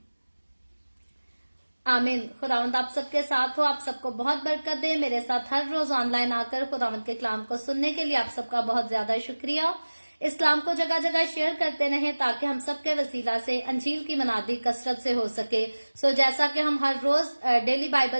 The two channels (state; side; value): inverted; both; correlation -1.00